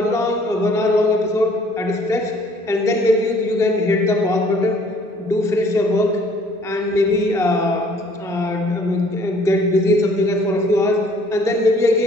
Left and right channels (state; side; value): normal; both; correlation 0.58